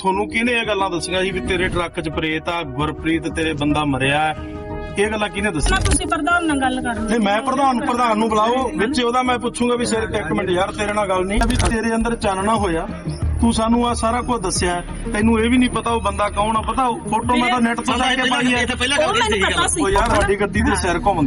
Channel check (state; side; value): identical; both; correlation 1.00